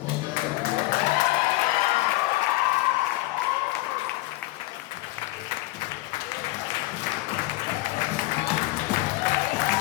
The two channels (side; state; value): right; quieter; 19.7 dB